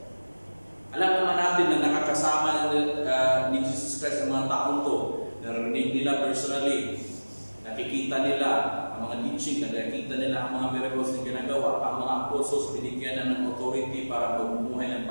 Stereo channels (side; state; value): both; inverted; correlation -1.00